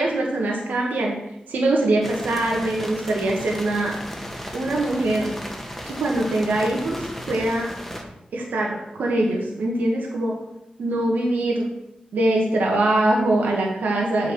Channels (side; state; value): both; normal; correlation 0.86